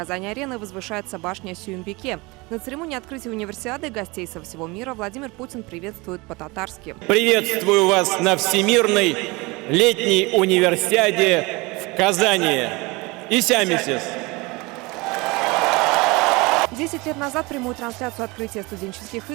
возвышается башня Сюембике. На церемонии открытия универсиады гостей со всего мира Владимир Путин приветствует по-татарски. Приветствую вас на Всемирной летней универсиаде в Казани. Исямисис. 10 лет назад прямую трансляцию открытия студенческих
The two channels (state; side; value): quieter; left; 24.7 dB